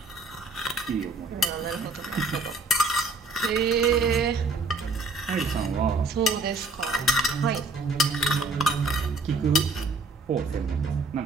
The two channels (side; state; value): left; quieter; 3.4 dB